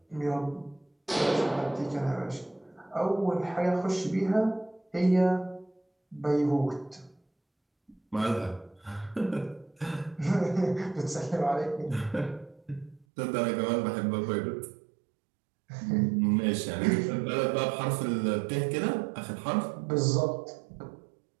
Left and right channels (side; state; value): left; drops out; at 13.1 s